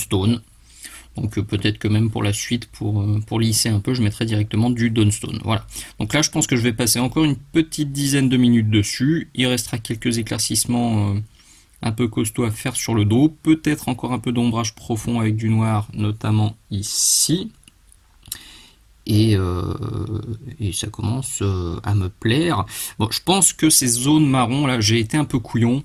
Donc peut-être que même pour la suite, pour lisser un peu, je mettrai directement du Dawnstone. Voilà. Donc là, je pense que je vais passer encore une petite dizaine de minutes dessus. Il restera quelques éclaircissements un peu costauds à faire sur le dos. Peut-être encore un peu d'ombrage profond avec du noir, notamment ici. Et ça commence à me plaire. Bon, je pense que ces zones marron, là, j'ai été un peu couillon.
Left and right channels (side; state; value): both; identical; correlation 1.00